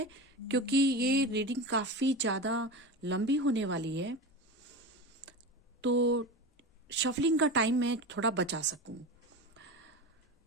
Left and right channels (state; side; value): normal; both; correlation 0.25